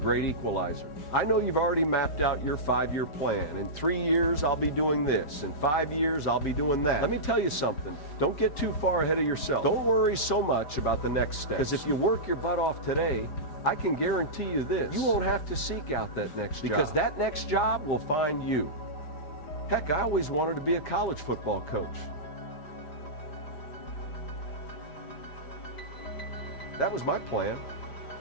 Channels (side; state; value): right; late; 5.0 ms